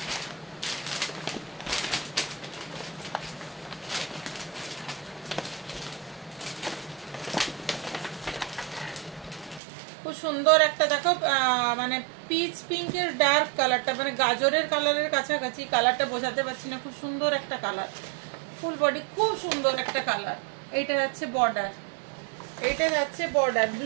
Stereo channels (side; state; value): left; drops out; at 9.6 s